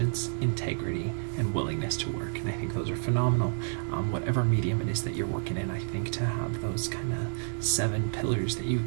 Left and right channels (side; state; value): left; silent; digital silence